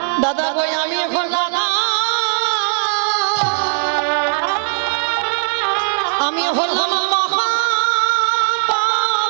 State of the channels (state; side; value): silent; left; 67 dB below the other